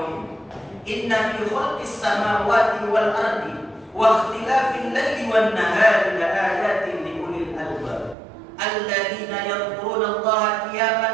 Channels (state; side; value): drops out; left; at 8.2 s